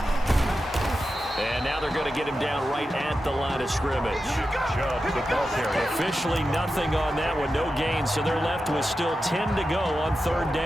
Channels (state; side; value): normal; both; correlation 0.91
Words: And now they're going to get him down right at the line of scrimmage. Chubb, the ball carrier. Officially nothing on that one, no gain, so they're left with still 10 to go on 3rd